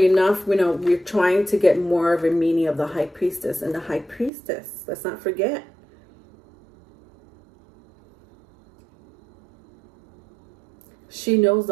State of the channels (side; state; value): left; drops out; at 4.3 s